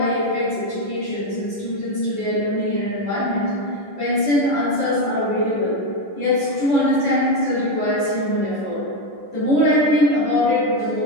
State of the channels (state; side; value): late; right; 10 ms